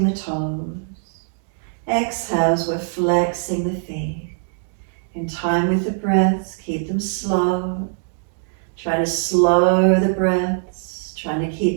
the toes. Exhales, we're flexing the feet. In time with the breaths, keep them slow. Try to slow the breaths. Trying to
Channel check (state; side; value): silent; left; digital silence